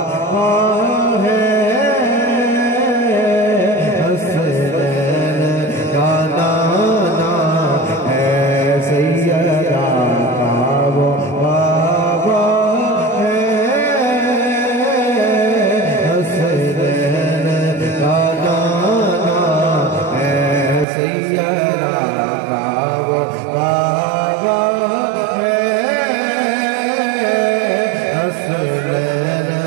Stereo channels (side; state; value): left; drops out; at 20.9 s